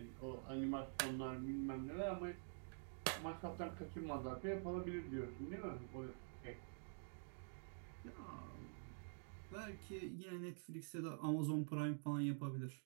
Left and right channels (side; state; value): left; silent; digital silence